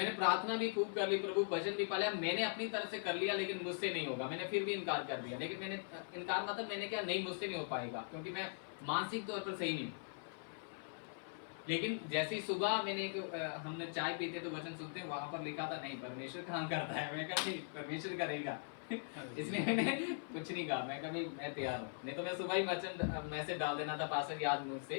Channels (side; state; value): right; silent; 51 dB below the other